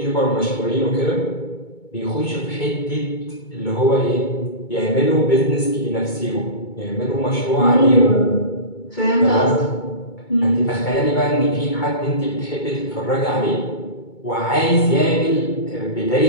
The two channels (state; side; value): late; right; 2.2 ms